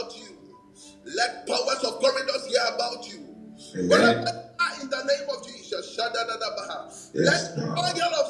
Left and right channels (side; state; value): both; identical; correlation 1.00